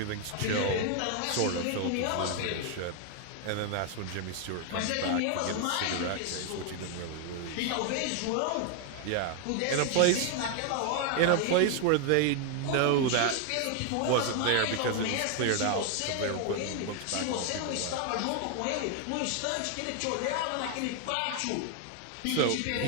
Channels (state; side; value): different; both; correlation 0.00